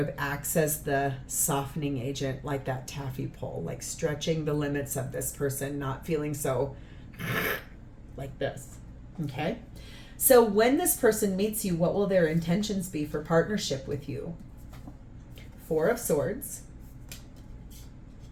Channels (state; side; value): identical; both; correlation 1.00